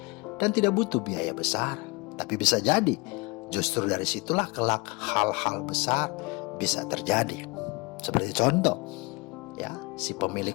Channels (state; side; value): quieter; right; 27.0 dB